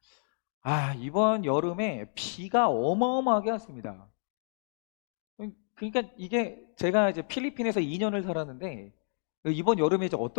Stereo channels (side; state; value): right; silent; digital silence